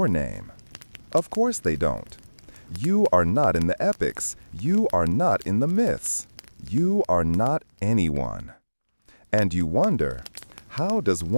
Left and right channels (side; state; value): both; inverted; correlation -1.00